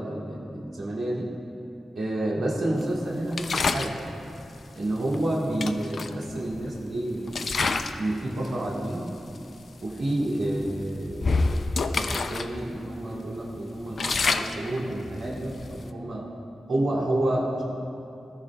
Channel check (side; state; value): both; normal; correlation 0.91